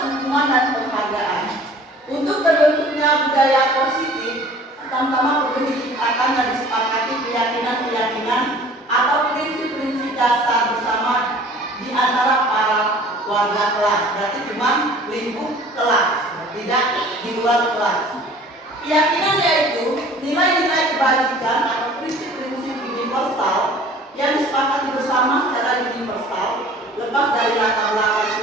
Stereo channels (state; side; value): normal; both; correlation 0.48